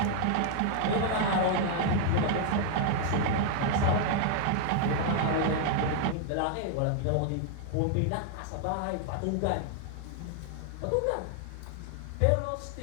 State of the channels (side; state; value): both; different; correlation 0.00